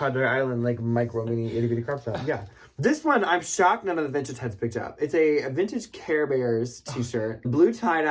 Island, like, micro mini itty bitty crop top. Yeah. This one, I'm shocked none of the vintage heads picked up. It's a vintage Care Bears t-shirt. Blue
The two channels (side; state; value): both; identical; correlation 1.00